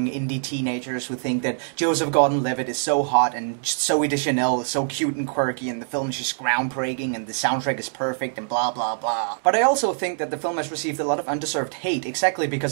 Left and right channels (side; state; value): left; silent; digital silence